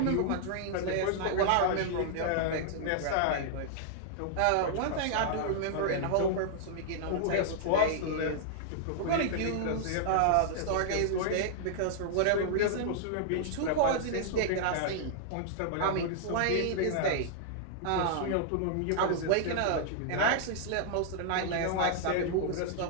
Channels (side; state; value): both; different; correlation -0.01